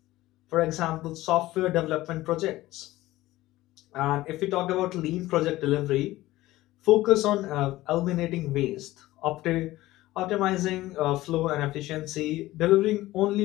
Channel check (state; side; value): quieter; right; 17.1 dB